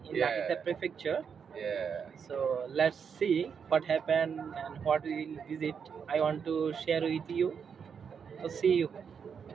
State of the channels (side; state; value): left; quieter; 6.7 dB